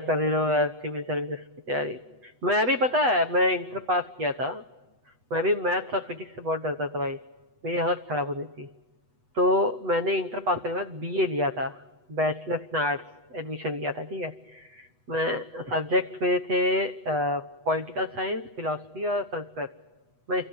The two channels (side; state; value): left; late; 8.1 ms